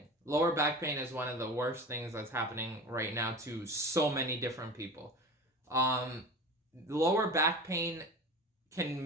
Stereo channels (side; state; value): both; normal; correlation 0.34